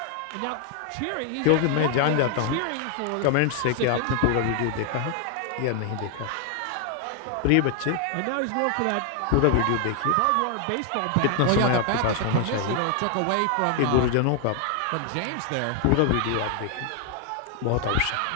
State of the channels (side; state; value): both; different; correlation 0.00